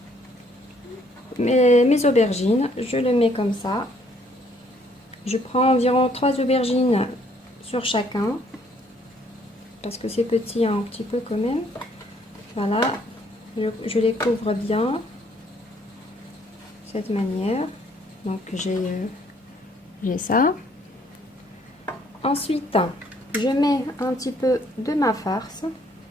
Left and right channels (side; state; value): both; normal; correlation 0.65